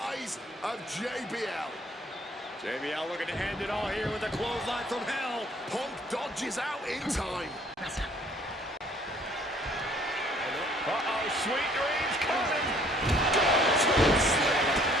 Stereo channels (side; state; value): both; normal; correlation 0.59